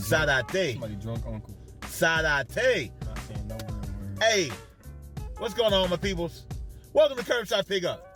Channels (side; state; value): both; identical; correlation 1.00